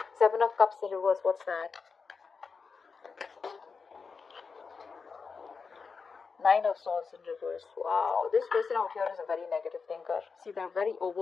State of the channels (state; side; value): quieter; right; 5.1 dB